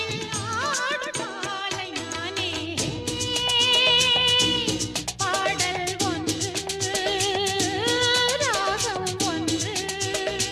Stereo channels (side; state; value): both; identical; correlation 1.00